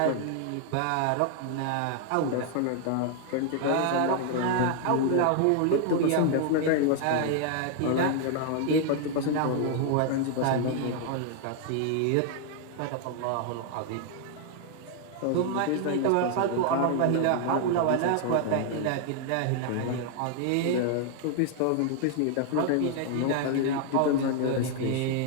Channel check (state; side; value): different; both; correlation 0.00